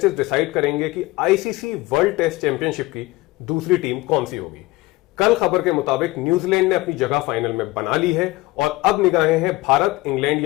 डिसाइड करेंगे कि आईसीसी वर्ल्ड टेस्ट चैंपियनशिप की दूसरी टीम कौन सी होगी। कल खबर के मुताबिक न्यूजीलैंड ने अपनी जगह फाइनल में बना ली है और अब निगाहें हैं भारत, इंग्लैंड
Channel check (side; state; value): right; quieter; 20.1 dB